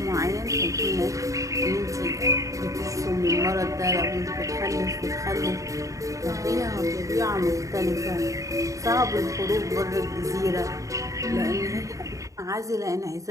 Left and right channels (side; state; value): left; late; 0.16 ms